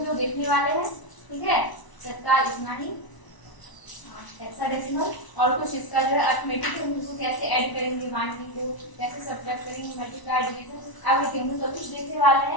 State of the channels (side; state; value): right; late; 1.0 ms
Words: लोग देखने वाले हैं, ठीक है। तत्काल इतना ही हेक्साडेसिमल और कुछ इसका जो है अरिथमेटिक है, उसको कैसे ऐड करेंगे, बाइनरी को कैसे सब्ट्रैक्ट करेंगे, मल्टीप्लाई डिवीजन एवरीथिंग हम सब कुछ देखने वाले